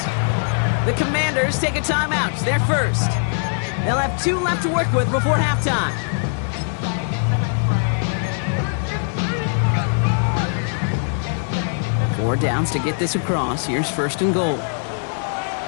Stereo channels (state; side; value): silent; right; 65 dB below the other